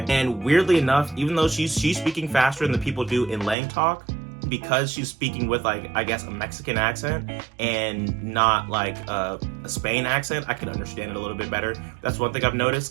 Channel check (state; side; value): drops out; left; at 3.6 s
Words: And weirdly enough, even though she's speaking faster than the people do in Lang Talk, because she's speaking with like, I guess, a Mexican accent and not like a Spain accent, I can understand it a little bit better. That's one thing I've